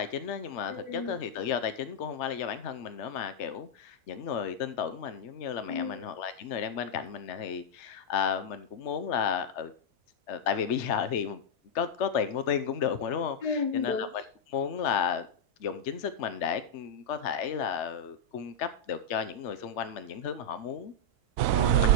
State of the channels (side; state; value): both; normal; correlation -0.04